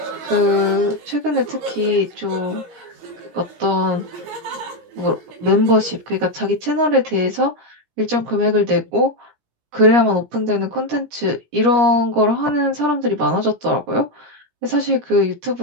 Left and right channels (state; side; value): late; left; 17 ms